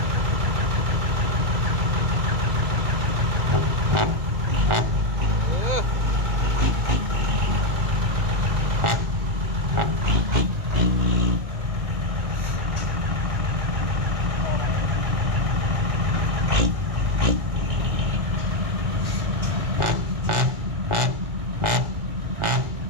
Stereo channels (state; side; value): late; left; 1.4 ms